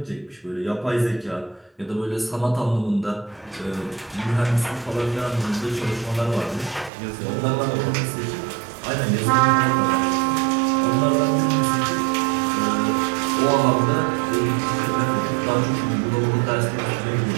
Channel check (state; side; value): drops out; left; at 6.9 s